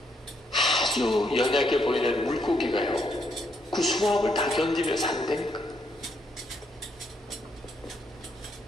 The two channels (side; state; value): both; normal; correlation 0.75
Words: 아주 연약해 보이는 물고기가요, 그 수압을 다 견디며 산다니까.